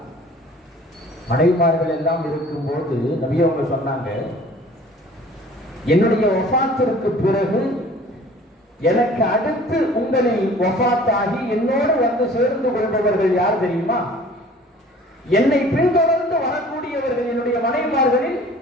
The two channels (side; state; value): both; normal; correlation 0.49